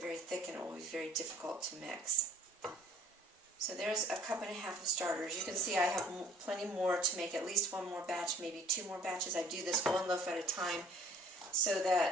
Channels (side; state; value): both; normal; correlation 0.54